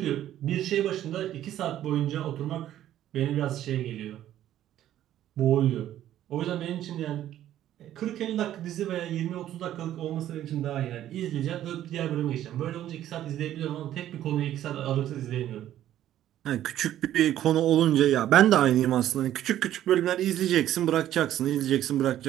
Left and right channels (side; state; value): left; quieter; 12.3 dB